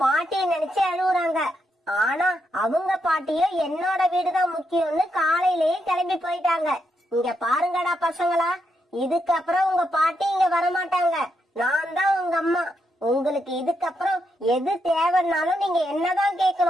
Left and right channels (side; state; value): both; normal; correlation 0.81